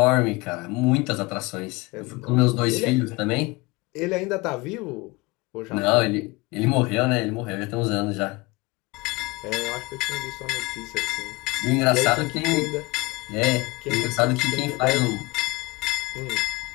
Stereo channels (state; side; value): quieter; right; 23.6 dB